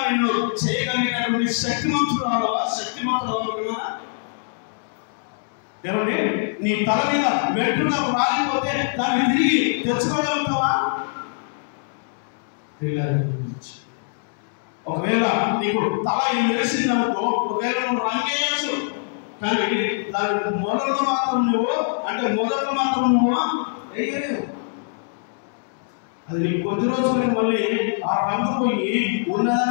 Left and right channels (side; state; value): right; silent; 63 dB below the other